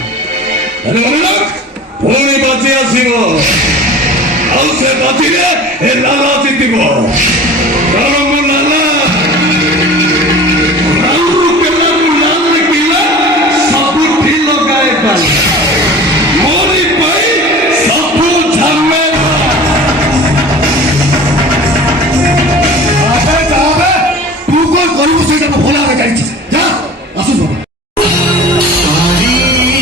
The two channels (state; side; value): normal; both; correlation 0.40